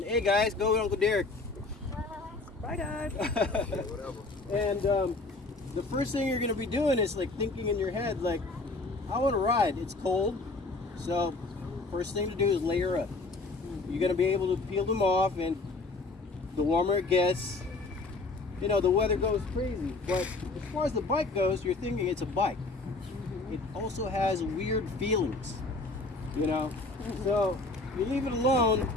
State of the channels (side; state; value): right; quieter; 3.3 dB